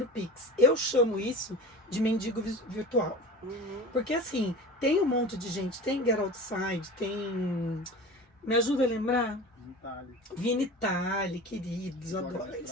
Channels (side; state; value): both; normal; correlation 0.34